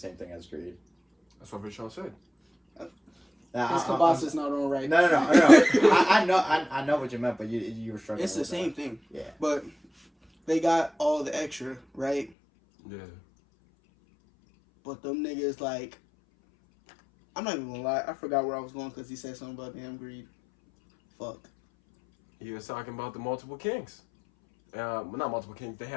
thing as greed. That's what Vashawn said. Now, His kielbasa is not on right. No. I know what you meant, but you were struggling. It's the with same that. thing. Yeah. But they got all the extra, right? Yeah. But them niggas, like, I'm not even gonna lie. I forgot where I was going because he said something about damn greed. Fuck. He was talking about the multiple kings. Well, not multiple kings. They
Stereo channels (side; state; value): right; drops out; at 12.3 s